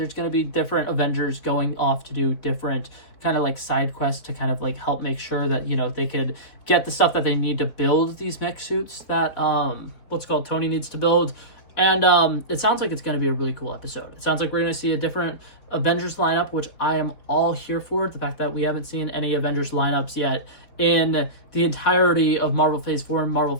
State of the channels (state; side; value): late; right; 4.3 ms